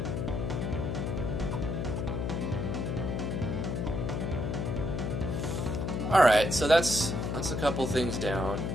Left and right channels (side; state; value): left; noise; hum, 1 dB below the sound